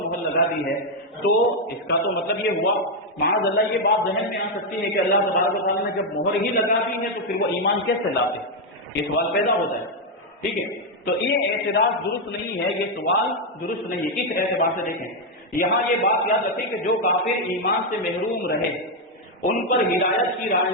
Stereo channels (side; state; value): both; normal; correlation 0.02